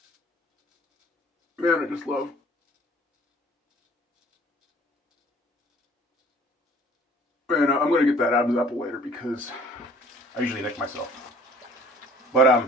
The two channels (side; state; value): both; normal; correlation 0.54